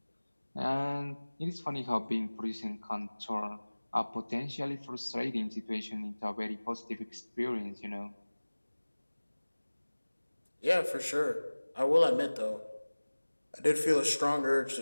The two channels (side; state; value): both; inverted; correlation -1.00